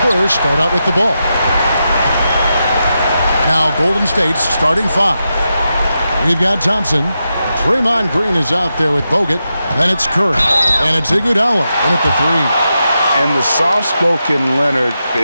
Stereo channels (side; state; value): both; inverted; correlation -0.88